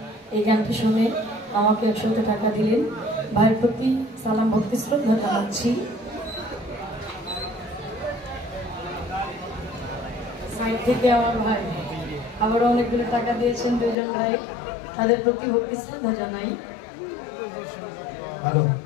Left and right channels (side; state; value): right; drops out; at 14.0 s